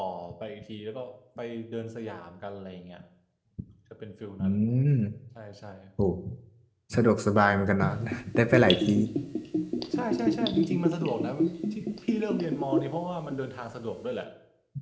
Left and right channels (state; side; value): identical; both; correlation 1.00